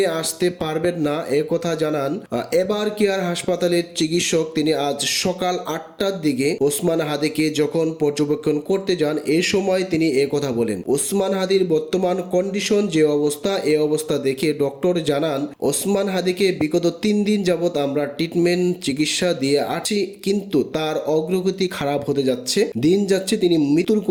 আসতে পারবেন না এ কথা জানান এবার কেয়ার হাসপাতালের চিকিৎসক। তিনি আজ সকাল 8টার দিকে ওসমান হাদিকে যখন পর্যবেক্ষণ করতে যান এই সময় তিনি এ কথা বলেন। ওসমান হাদির বর্তমান কন্ডিশন যে অবস্থা, এ অবস্থা দেখে ডক্টর জানান ওসমান হাদিকে বিগত 3 দিন যাবত আমরা ট্রিটমেন্ট চিকিৎসা দিয়ে আছি, কিন্তু তার অগ্রগতি খারাপ হতে যাচ্ছে, দিন যাচ্ছে তিনি মৃত্যুর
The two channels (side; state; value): both; identical; correlation 1.00